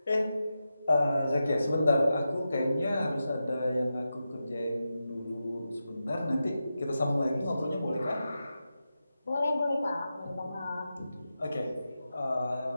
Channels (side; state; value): both; inverted; correlation -0.90